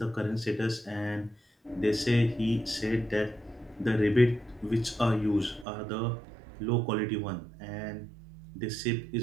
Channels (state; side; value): drops out; left; at 5.7 s